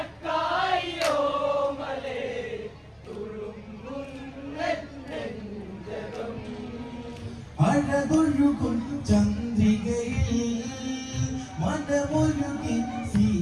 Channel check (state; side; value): identical; both; correlation 1.00